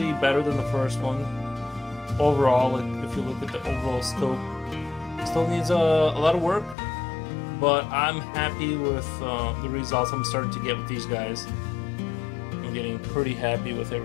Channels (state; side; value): drops out; right; at 6.8 s